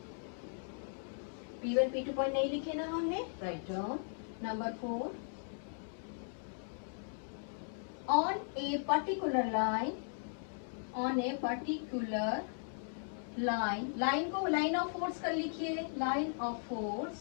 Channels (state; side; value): silent; right; digital silence